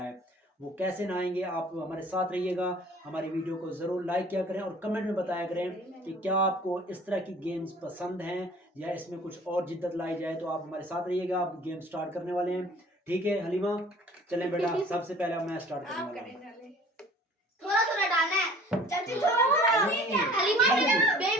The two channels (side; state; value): both; normal; correlation 0.49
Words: वो कैसे नहाएंगे। आप हमारे साथ रहिएगा, हमारी वीडियो को ज़रूर लाइक किया करें और कमेंट में बताया करें कि क्या आपको इस तरह की गेम्स पसंद हैं या इसमें कुछ और जिद्दत लाई जाए। तो आप हमारे साथ रहिएगा, आप गेम स्टार्ट करने वाले हैं। ठीक है हलीमा, चलें बेटा। सबसे पहले मैं स्टार्ट करने वाला हूं। थोड़ा थोड़ा डालना है चाची, थोड़ा थोड़ा। हलीमा